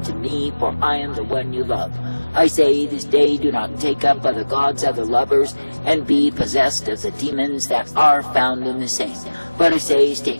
me, for I am the one you love. I say this day, do not take up other gods, other lovers, and be possessed of the demons that are found in the same. But I say,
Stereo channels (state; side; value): inverted; both; correlation -1.00